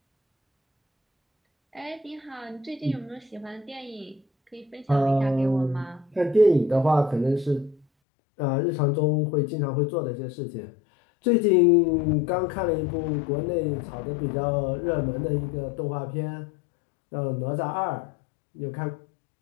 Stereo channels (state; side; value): drops out; right; at 7.9 s